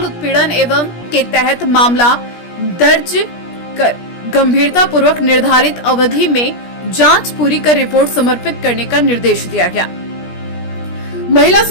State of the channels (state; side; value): late; right; 17 ms